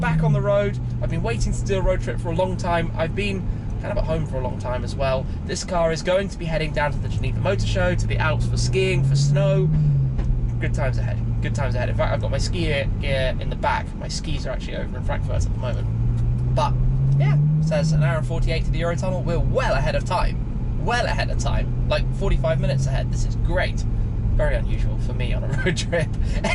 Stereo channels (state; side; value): identical; both; correlation 1.00